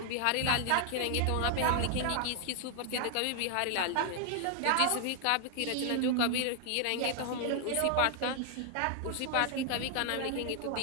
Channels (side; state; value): both; different; correlation 0.00